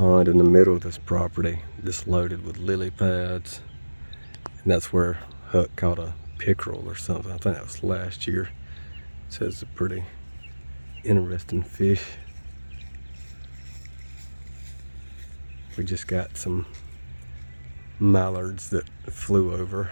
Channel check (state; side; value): inverted; both; correlation -1.00